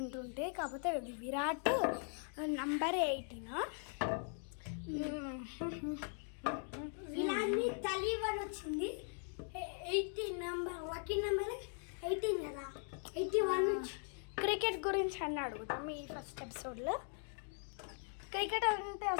కాకపోతే విరాట్ నంబర్ 18. విరాట్ని 31 వచ్చింది. 18 నెంబర్, లక్కీ నెంబర్ 18 కదా, 81. క్రికెట్ గురించి అన్నీ అడుగుతాం ఈ ఫస్ట్ ఎపిసోడ్లో. క్రికెట్ అంటే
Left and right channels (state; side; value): silent; right; 51 dB below the other